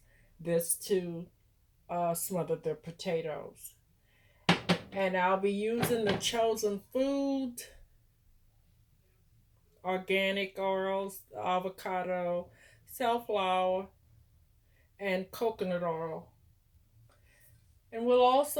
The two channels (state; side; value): identical; both; correlation 1.00